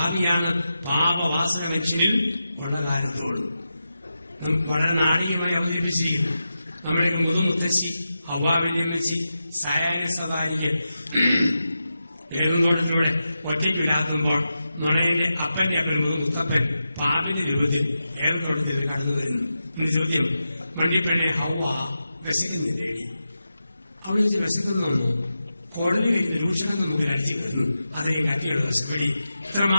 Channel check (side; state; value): both; inverted; correlation -0.90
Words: പാപവാസന മനുഷ്യനിൽ ഉള്ള കാലത്തോടും. വളരെ നാടകീയമായി അവതരിപ്പിച്ചിരിക്കുന്നു. നമ്മുടെയൊക്കെ മുതുമുത്തശ്ശി ഹവ്വാവല്യമ്മച്ചി സായാഹ്ന സവാരിക്ക് ഏതുന്തോട്ടത്തിലൂടെ ഒറ്റയ്ക്ക് വിലാത്തുമ്പോൾ നുണയന്റെ അപ്പന്റെ അപ്പനും മുത്തപ്പൻ പാപിന്റെ രൂപത്തിൽ ഏതുന്തോട്ടത്തിൽ കടന്നു വരുന്നു. എന്റെ ചോദ്യം, വണ്ടിപ്പെണ്ണെ ഹവ്വ വിശക്കുന്നില്ലേടി? അവിടെ വെച്ച് വിശക്കുന്നോന്നു കോടതി കഴിയുന്ന രൂക്ഷണം നമുക്ക് അടിച്ചു കയറുന്നു. അതെയും കത്തിയുള്ള വിശപ്പടി.